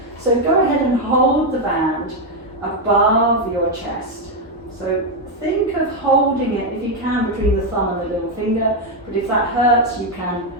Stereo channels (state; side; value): normal; both; correlation 0.04